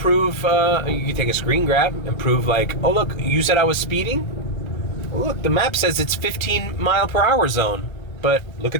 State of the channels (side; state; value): right; late; 1.3 ms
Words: you could take a screen grab and prove like, oh look, you said I was speeding? Well, look, the map says it's 15 mile per hour zone. But look